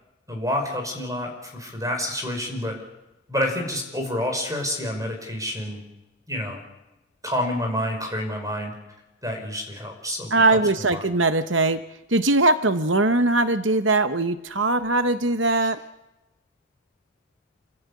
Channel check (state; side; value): normal; both; correlation -0.03